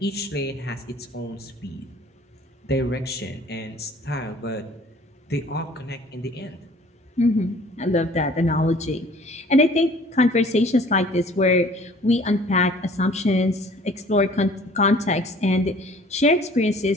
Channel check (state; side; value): normal; both; correlation 0.52